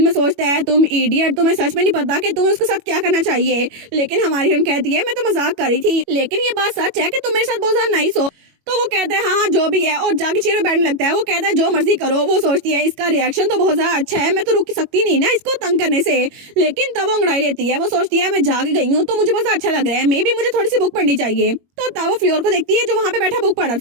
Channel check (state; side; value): late; left; 21 ms